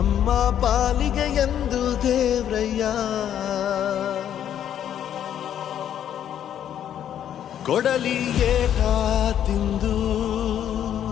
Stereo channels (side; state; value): right; quieter; 10.1 dB